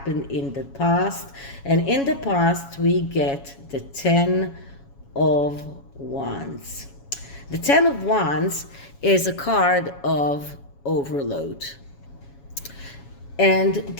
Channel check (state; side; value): late; right; 7.2 ms